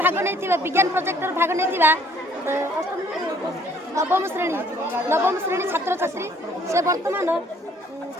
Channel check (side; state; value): both; normal; correlation 0.61